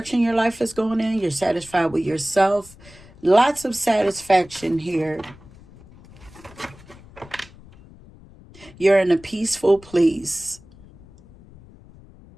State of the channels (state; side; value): noise; left; rumble, 22 dB below the sound